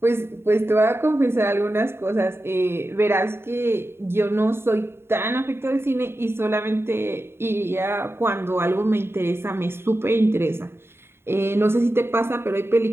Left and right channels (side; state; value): left; late; 0.11 ms